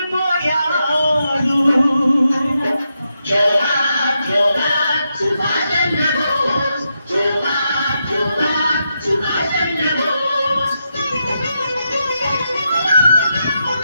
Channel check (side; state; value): both; inverted; correlation -0.85